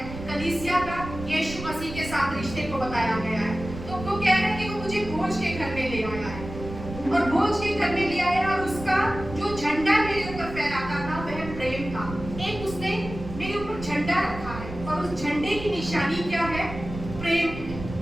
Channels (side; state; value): right; noise; rumble, 10 dB below the sound